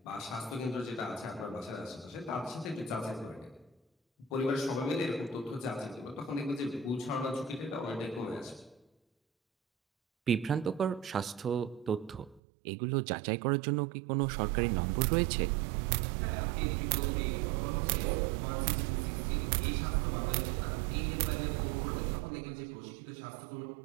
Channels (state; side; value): drops out; left; at 12.4 s